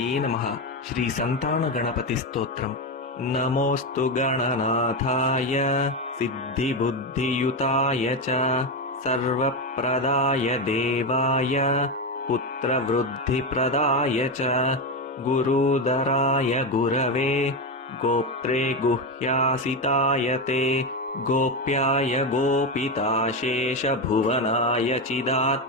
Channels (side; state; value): both; normal; correlation 0.12